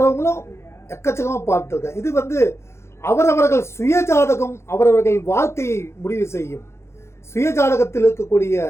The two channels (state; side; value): late; right; 0.13 ms